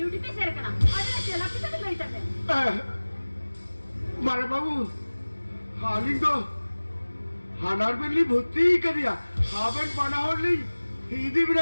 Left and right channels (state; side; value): inverted; both; correlation -1.00